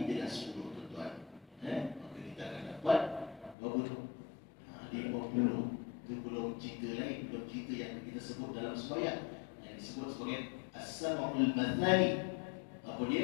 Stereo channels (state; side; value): drops out; right; at 3.6 s